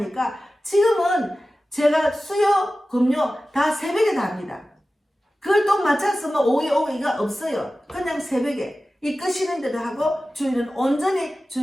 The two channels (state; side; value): normal; both; correlation 0.95